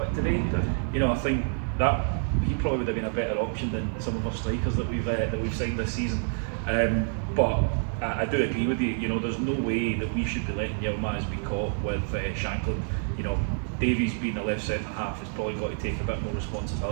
today, you know, I think that he probably would have been a better option than some of our strikers that we've signed this season. But I do agree with you. You know, there's no way that we should be letting Yilmaz be caught with Shankland. You know, Davies being the left centre half has probably got to take a bit more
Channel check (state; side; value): silent; left; 60 dB below the other